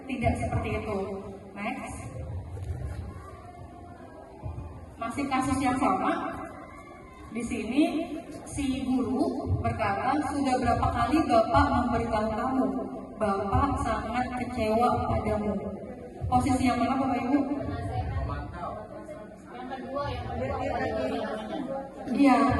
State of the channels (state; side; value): identical; both; correlation 1.00